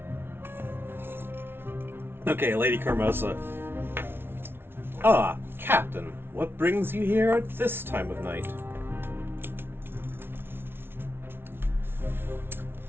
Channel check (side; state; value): left; late; 0.11 ms